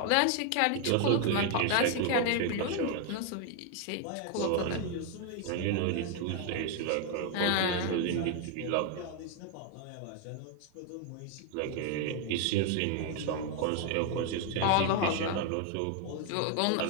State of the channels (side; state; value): both; different; correlation 0.01